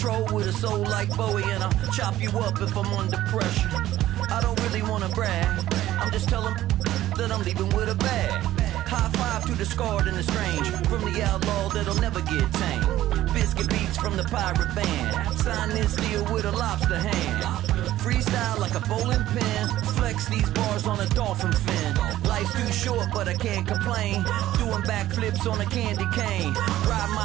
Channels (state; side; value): quieter; left; 14.2 dB